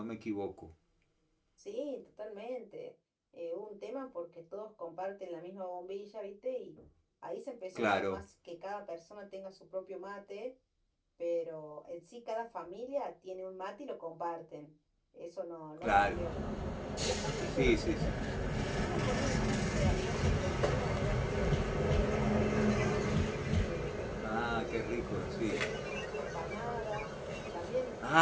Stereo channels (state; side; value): identical; both; correlation 1.00